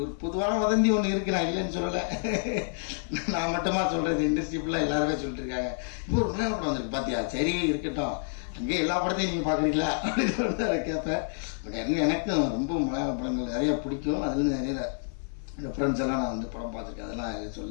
பொதுவான வதந்தி ஒன்று இருக்கு, நான் இல்லைன்னு சொல்லலை. நான் மட்டுமா சொல்கிறது, இண்டஸ்ட்ரி ஃபுல்லாக எல்லாருமே சொல்லிட்டு இருக்காங்க. இப்போ ஒரு மலையாள படம் வந்துருக்கு பார்த்தியா, சரி இருக்கட்டும், அங்கே எல்லா படத்தையும் நீங்கள் பார்க்குறீங்களா அப்படின்னு சொல்லிட்டு அதை கேட்பேன். பட் எனக்கும் ரொம்ப மலையாள படங்கள் நிறைய பிடிக்கும். அதுலேருந்து நிறைய ரெஃபரன்ஸ் எல்லாம் நான் வந்து படம் பார்த்துருக்கேன், அதெல்லாம்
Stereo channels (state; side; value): silent; right; 59 dB below the other